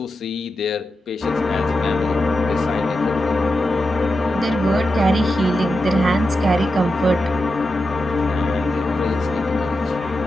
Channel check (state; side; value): normal; both; correlation 0.89